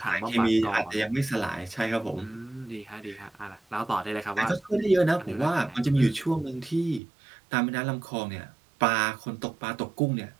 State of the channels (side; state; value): left; drops out; at 7.0 s